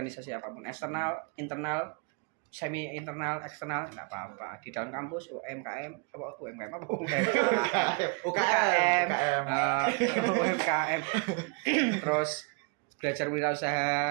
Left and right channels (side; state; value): left; quieter; 33.1 dB